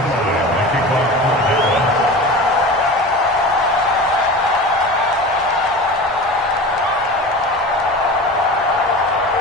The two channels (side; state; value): both; normal; correlation 0.33